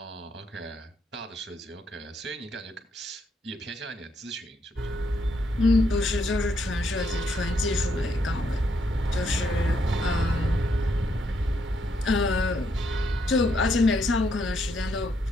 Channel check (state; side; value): normal; both; correlation 0.75